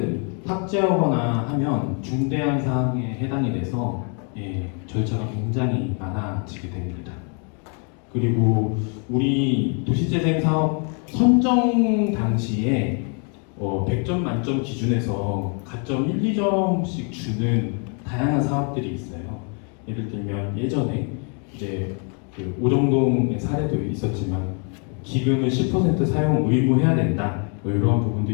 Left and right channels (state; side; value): quieter; right; 39.5 dB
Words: 삭제하거나 하면 중대한 사항에 해당이 돼서 절차가 굉장히 많아지게 됩니다. 그리고 우리 도시재생 사업 선정 당시에 100점 만점 기준에서 가점 1, 2점씩 주는 다양한 사업들이 있어요. 예를 들면 예전에 이제 그 오정동의 사례도 있었지만 기금을 10% 사용 의무해야 된다 뭐 이런 부분도